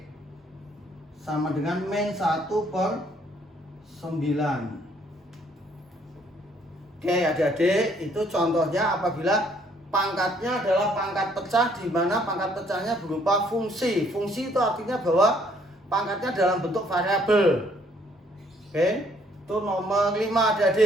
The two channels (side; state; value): both; normal; correlation 0.65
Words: sama dengan min 1 per 9. Oke, adik-adik, itu contohnya apabila pangkatnya adalah pangkat pecah, di mana pangkat pecahnya berupa fungsi. Fungsi itu artinya bahwa pangkatnya dalam bentuk variabel. Oke, itu nomor 5,